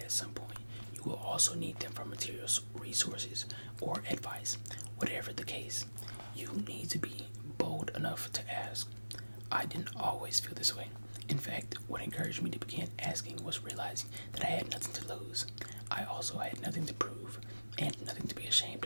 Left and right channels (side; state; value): both; inverted; correlation -1.00